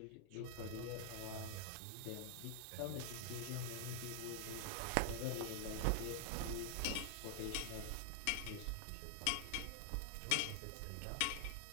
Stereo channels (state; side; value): different; both; correlation 0.00